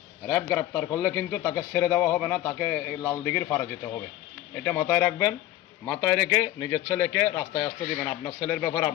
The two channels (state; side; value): quieter; right; 14.1 dB